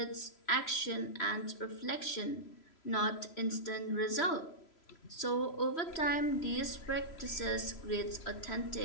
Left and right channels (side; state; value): right; late; 3.0 ms